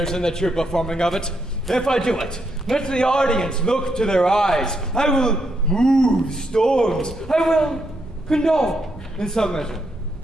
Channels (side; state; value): both; normal; correlation 0.79